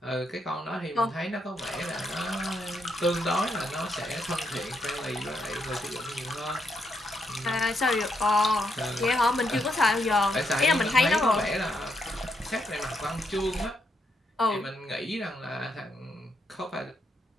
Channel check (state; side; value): normal; both; correlation 0.79